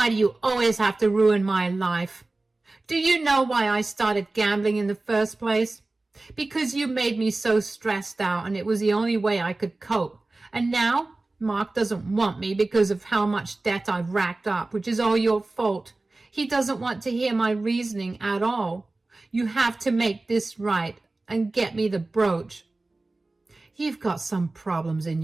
do you always have to ruin my life? Do you know why I started gambling in the first place? Because you made me so stressed out, and it was the only way I could cope. And now Mark doesn't want me because of how much debt I've racked up, which is all your fault. He doesn't want to hear my reasoning at all. You have to make this right and get me the brooch. You've got some problems in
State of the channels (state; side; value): quieter; left; 3.1 dB